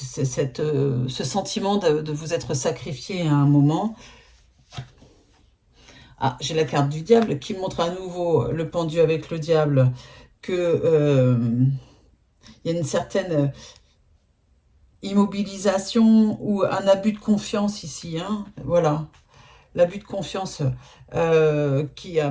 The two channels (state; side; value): identical; both; correlation 1.00